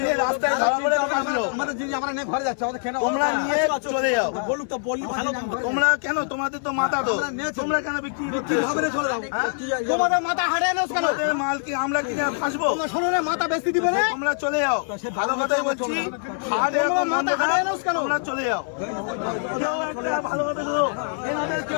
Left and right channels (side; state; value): right; silent; digital silence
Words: রাস্তায় ধরা পড়ে আসলো, তোমরা নিয়ে চলে যাও। তোমরা কেন, তোমাদের তো মাথা তো, তোমরা কেন বিক্রি হবে? তোমাদের মাল কি আমরা কিনে ফাঁসবো? তোমরা চলে যাও, ভালো কথাই বলছি। তোমরা চলে যাও, কেউ একটা ভালো কথা বলো, এনাদের